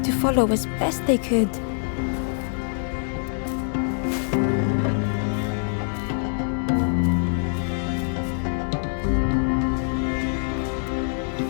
to follow as best they could.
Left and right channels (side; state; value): right; silent; digital silence